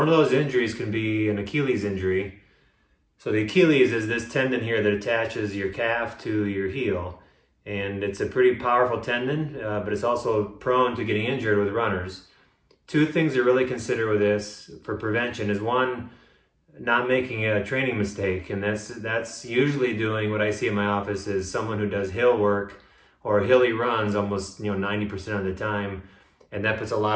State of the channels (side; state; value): both; identical; correlation 1.00